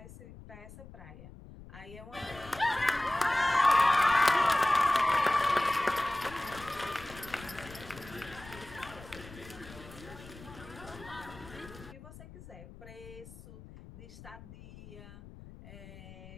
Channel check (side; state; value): left; noise; rumble, 17 dB below the sound